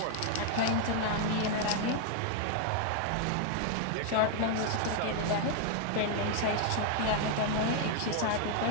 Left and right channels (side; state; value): both; different; correlation 0.00